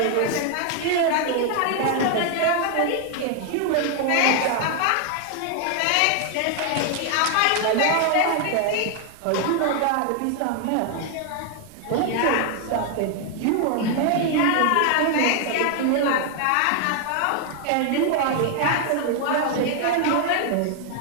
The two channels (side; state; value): both; different; correlation 0.00